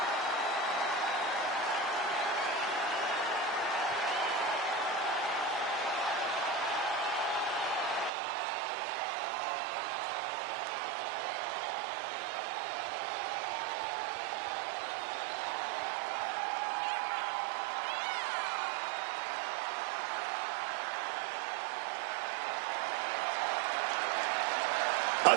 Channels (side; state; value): left; drops out; at 8.1 s